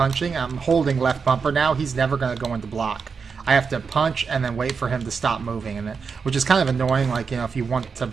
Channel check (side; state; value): left; quieter; 5.5 dB